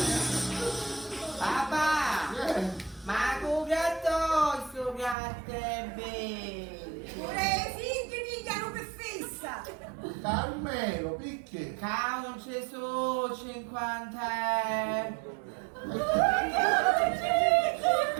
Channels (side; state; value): left; drops out; at 5.2 s